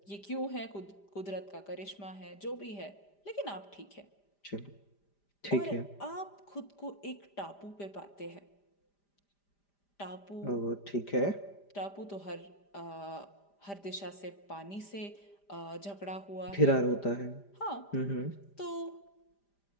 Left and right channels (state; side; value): late; right; 5.0 ms